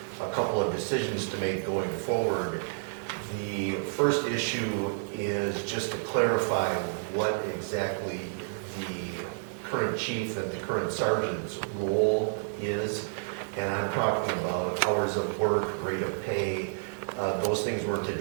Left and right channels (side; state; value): left; silent; digital silence